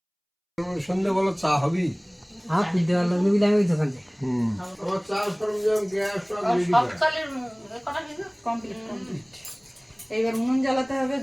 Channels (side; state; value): both; identical; correlation 1.00